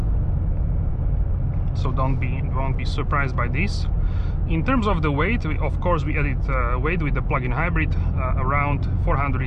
So don't be surprised by this. In terms of the weight, of course we added weight with the plug-in hybrid, around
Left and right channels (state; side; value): identical; both; correlation 1.00